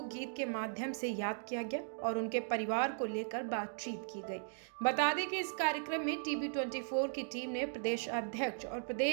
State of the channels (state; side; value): silent; left; digital silence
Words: गीत के माध्यम से याद किया गया और उनके परिवार को लेकर बातचीत की गई। बता दें कि इस कार्यक्रम में TB24 की टीम ने प्रदेश अध्यक्ष और